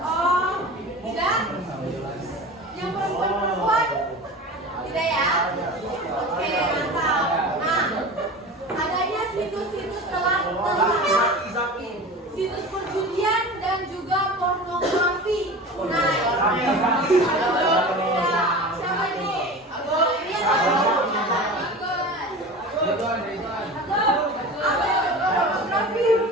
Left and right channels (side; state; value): both; normal; correlation 0.34